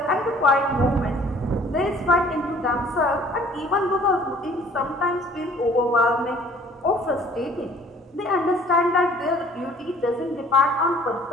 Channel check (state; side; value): normal; both; correlation 0.54